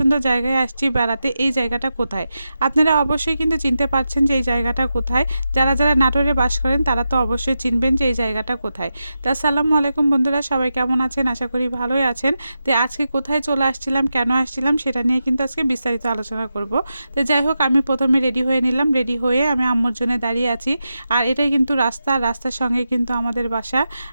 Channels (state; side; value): inverted; both; correlation -0.89